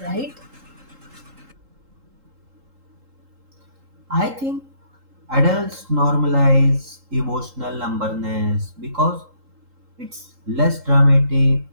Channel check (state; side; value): late; left; 3.8 ms